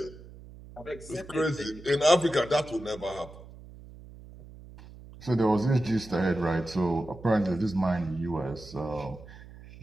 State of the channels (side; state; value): right; noise; hum, 18 dB below the sound